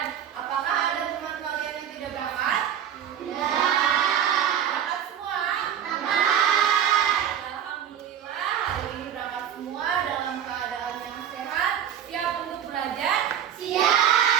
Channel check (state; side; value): quieter; left; 9.5 dB